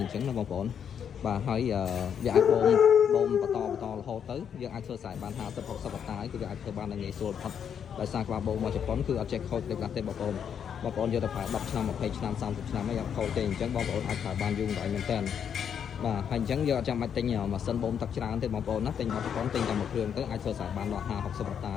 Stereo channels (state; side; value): quieter; right; 8.0 dB